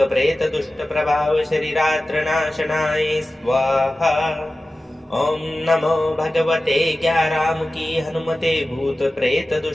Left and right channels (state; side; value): normal; both; correlation 0.95